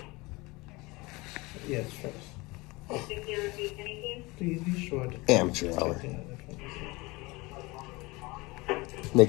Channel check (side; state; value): right; quieter; 23.7 dB